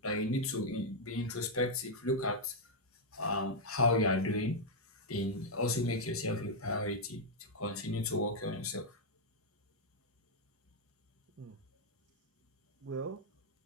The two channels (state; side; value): normal; both; correlation -0.03